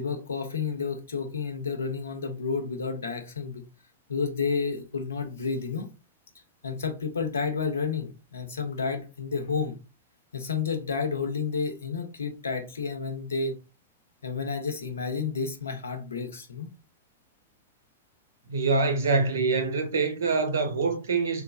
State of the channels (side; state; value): both; inverted; correlation -0.46